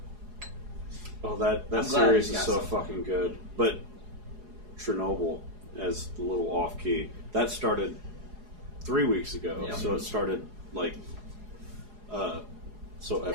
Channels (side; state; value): left; late; 4.8 ms